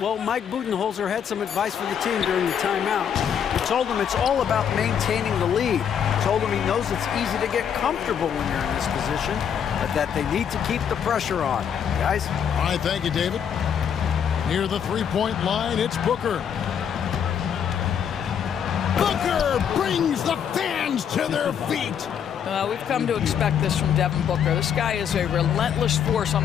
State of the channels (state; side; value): quieter; right; 8.2 dB